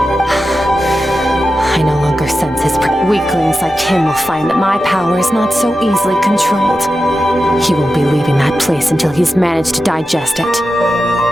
I no longer sense his... Weaklings like him will find that my power is not so easily controlled. He won't be leaving that place until he's managed to digest it.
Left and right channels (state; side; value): normal; both; correlation 0.92